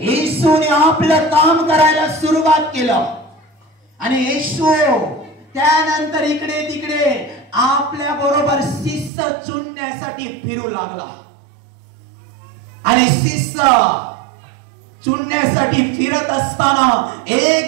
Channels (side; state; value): left; drops out; at 9.1 s